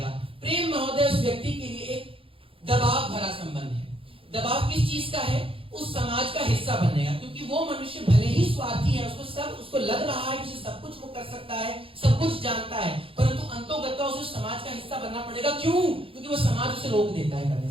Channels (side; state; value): left; late; 0.26 ms